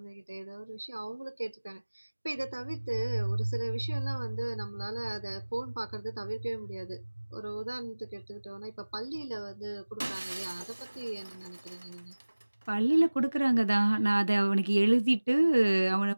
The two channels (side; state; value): both; inverted; correlation -1.00